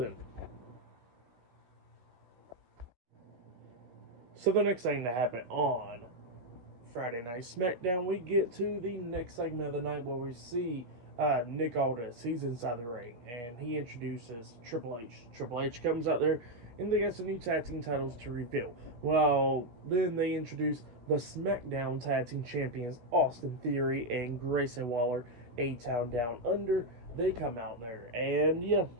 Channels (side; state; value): left; late; 16 ms